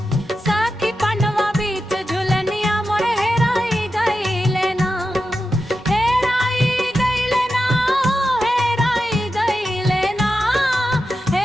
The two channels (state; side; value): normal; both; correlation 0.90